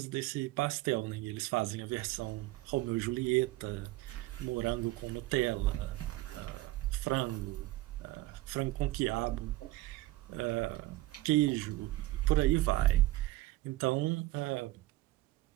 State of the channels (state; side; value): quieter; left; 17.9 dB